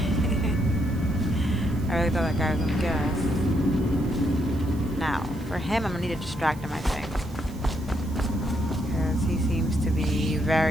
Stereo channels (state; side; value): noise; right; hiss, 23 dB below the sound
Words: I really thought that guy was gonna get us. Now, for him, I'm gonna need to distract him, I think. Because he seems to be